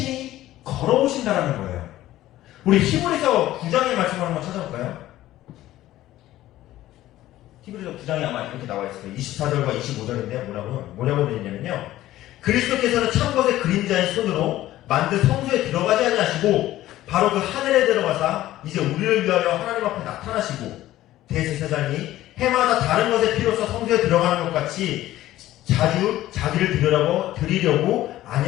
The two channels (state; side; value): quieter; right; 14.8 dB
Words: 걸어오신다라는 거예요. 우리 히브리서 9장의 말씀을 한번 찾아볼까요? 히브리서 9장에 아마 이렇게 나와 있어요. 24절과 25절인데 뭐라고 되어 있냐면요. 그리스도께서는 참 것의 그림자인 손으로 만든 성소에 들어가지 아니하시고 바로 그 하늘에 들어가사 이제 우리를 위하여 하나님 앞에 나타나시고 대제사장이 해마다 다른 것의 피로써 성소에 들어가는 것 같이 자주 자기를 드리려고